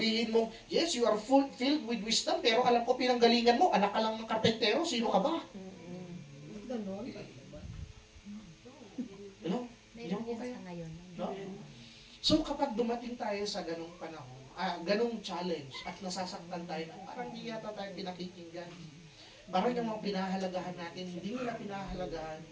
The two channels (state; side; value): identical; both; correlation 1.00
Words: mo, yes, you are filled with wisdom, pero alam ko pinanggalingan mo, anak ka lang ng karpentero, sino ka ba? Ganon. Hello? Diyan po kayo. No? So kapag dumating tayo sa ganong panahon, ganong challenge at nasasaktan tayo na parang hindi yata tayo pinakikinggan. Parang yung mga pinahalagahan natin, hindi nila pinahalagahan.